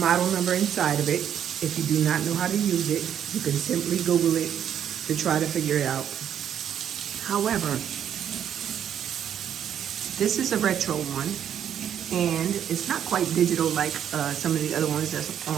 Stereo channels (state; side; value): quieter; left; 9.4 dB